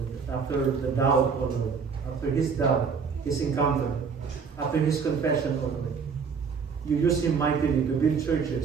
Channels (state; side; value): quieter; left; 5.8 dB